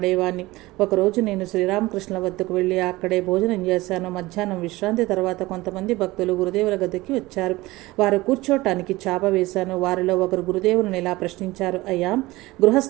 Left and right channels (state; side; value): quieter; left; 19.7 dB